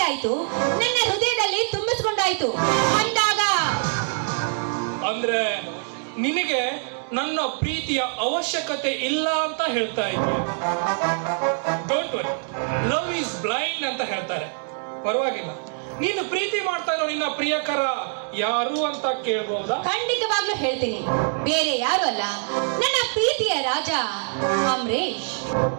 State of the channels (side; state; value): left; silent; 62 dB below the other